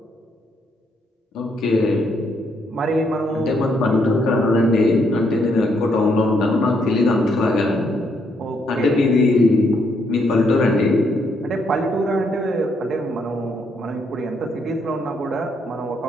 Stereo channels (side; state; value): both; normal; correlation 0.74